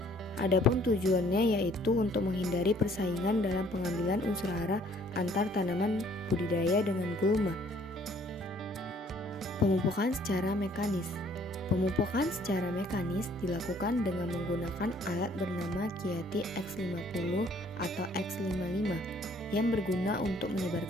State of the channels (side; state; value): both; normal; correlation 0.60